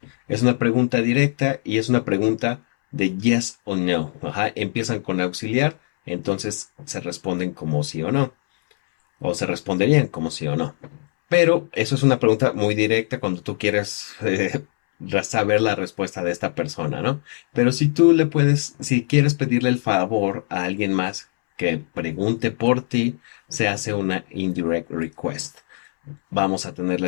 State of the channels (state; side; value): silent; right; 64 dB below the other